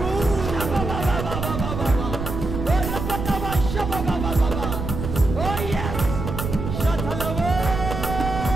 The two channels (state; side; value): noise; right; rumble, 5 dB below the sound